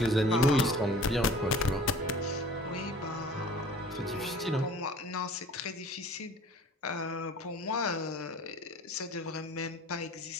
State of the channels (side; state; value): both; normal; correlation 0.47